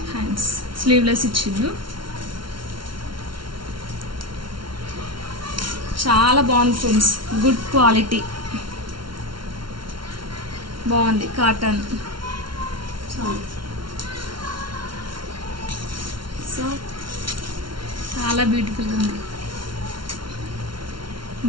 హ్యాండ్స్ స్లీవ్లెస్ ఇచ్చిండు. చాలా బాగుంది ఫ్రెండ్స్, గుడ్ క్వాలిటీ, బాగుంది. కాటన్. సో చాలా బ్యూటిఫుల్గా ఉంది.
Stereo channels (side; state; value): left; late; 0.73 ms